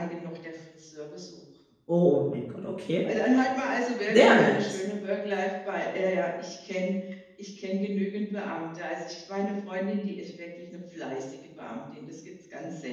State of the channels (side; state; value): both; identical; correlation 1.00